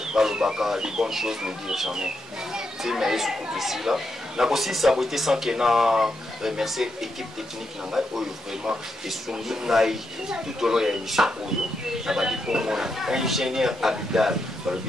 les bonnes choses nous dire jamais. C'est mais sous côté ici là. N'a aussi saboté sans qu'il n'a remercié l'équipe technique n'a vraiment et soumis tout au long de l'émission pour nous. N'a pas dit pour moi ingénieur Abidal par le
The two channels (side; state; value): both; normal; correlation 0.82